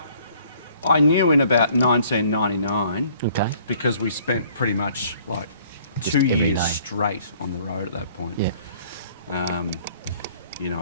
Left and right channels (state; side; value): inverted; both; correlation -0.58